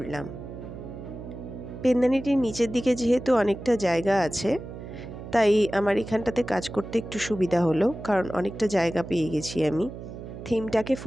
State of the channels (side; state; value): right; noise; hum, 11 dB below the sound